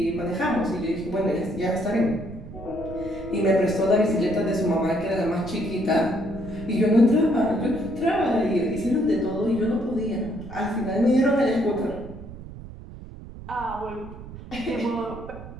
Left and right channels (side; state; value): right; noise; rumble, 14 dB below the sound